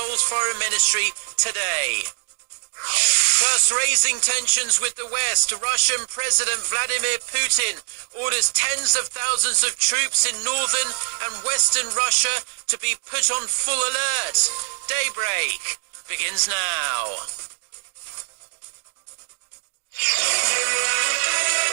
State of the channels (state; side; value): silent; left; digital silence